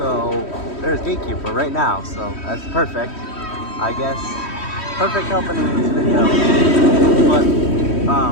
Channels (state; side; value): late; right; 3.1 ms